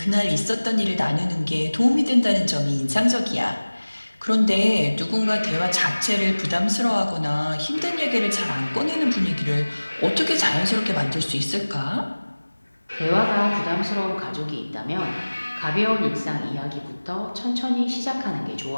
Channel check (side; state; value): both; inverted; correlation -1.00